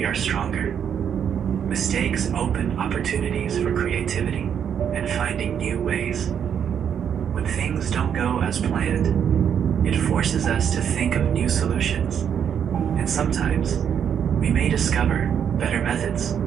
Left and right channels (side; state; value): left; quieter; 8.3 dB